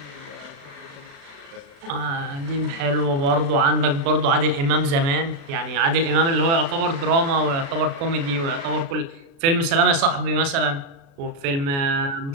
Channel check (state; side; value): late; left; 36 ms